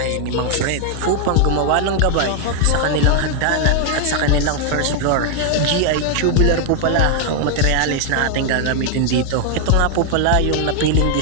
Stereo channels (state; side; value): different; both; correlation 0.00